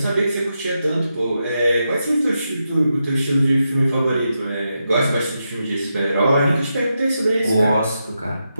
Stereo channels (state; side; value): inverted; both; correlation -0.86